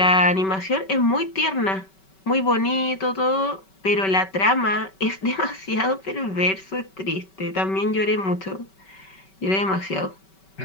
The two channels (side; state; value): right; late; 5.2 ms